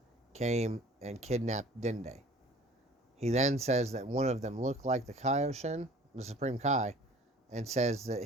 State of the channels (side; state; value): both; normal; correlation 0.48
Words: came and kidnapped Dende. He then says that one of them looked like the Kaioshin, the Supreme Kai, and says that